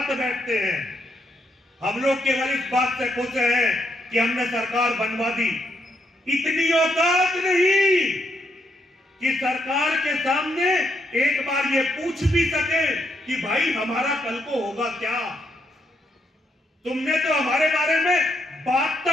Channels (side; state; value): both; normal; correlation 0.77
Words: बैठते हैं। हम लोग केवल इस बात से खुश हैं कि हमने सरकार बनवा दी। इतनी औकात नहीं कि सरकार के सामने एक बार ये पूछ भी सके कि भाई हमारा कल को होगा क्या। तुमने तो हमारे बारे में बात